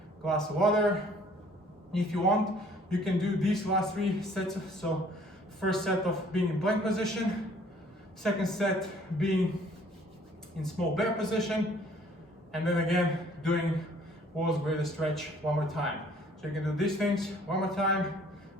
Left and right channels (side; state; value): both; normal; correlation 0.57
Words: glass of water. If you want, you can do these last 3 sets. So first set of being in plank position, second set being in small bear position, and then again doing world's greatest stretch 1 more time. So you can do these things 1 more time.